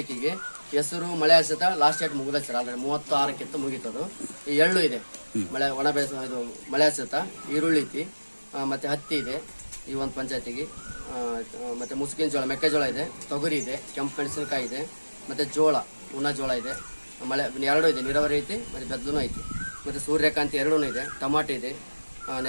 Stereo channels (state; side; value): inverted; both; correlation -1.00